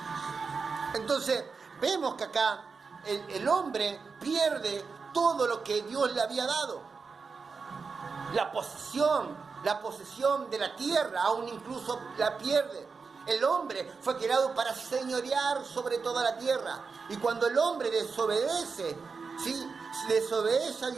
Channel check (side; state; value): left; quieter; 5.0 dB